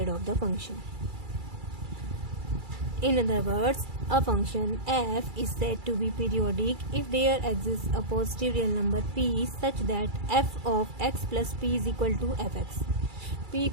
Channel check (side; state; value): left; late; 2.3 ms